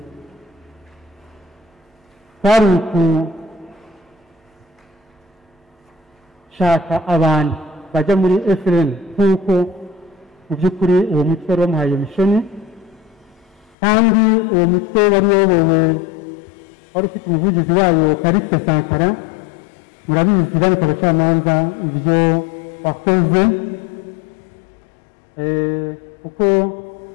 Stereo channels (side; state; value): right; drops out; at 13.8 s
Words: twari gushaka abantu bajya muri FLN nk'uko mu by'ukuri uwo mutwe wari wamuhaye mishoni, kandi uwo mutwe wari uyobowe, wari ufite umuvugizi wayo Kariste Sankara. Murabizi banki abacamanza ibyo wakoze, kuko